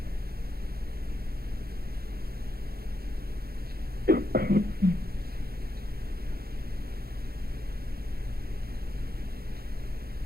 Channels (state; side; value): late; left; 0.45 ms